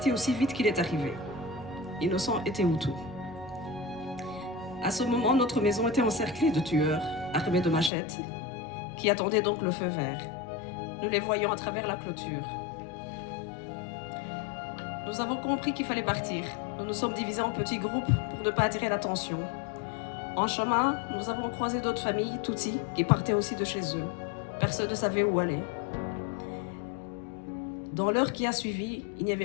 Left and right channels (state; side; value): drops out; right; at 7.9 s